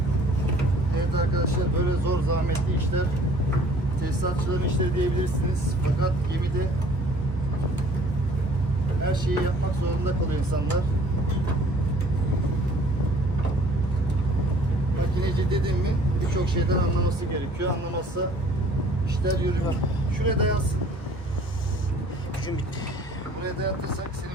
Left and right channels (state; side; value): normal; both; correlation 0.54